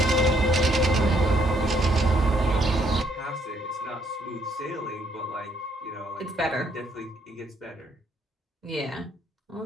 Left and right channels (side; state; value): both; normal; correlation 0.69